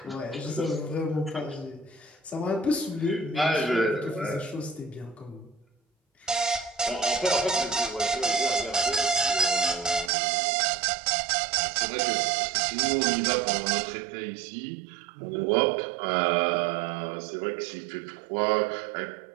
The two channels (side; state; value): left; drops out; at 10.1 s